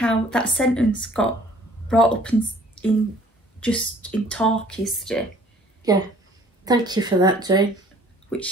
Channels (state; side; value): normal; both; correlation 0.55